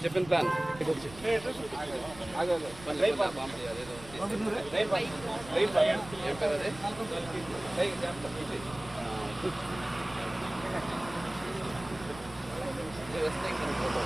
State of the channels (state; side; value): noise; right; rumble, 17 dB below the sound